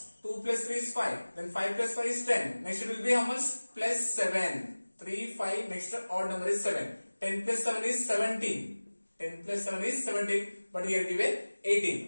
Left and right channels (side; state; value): both; inverted; correlation -1.00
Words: 2 plus 3 is 5. Then 5 plus 5 is 10. Next it will be how much? Plus 7. 3, 5, next odd number is 7. 10 plus 7 is 17. 10 plus 7 is 17. But here given